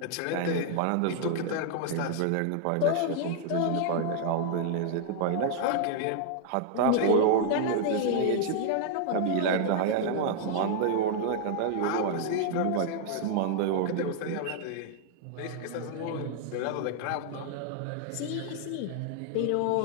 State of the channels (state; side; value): different; both; correlation 0.00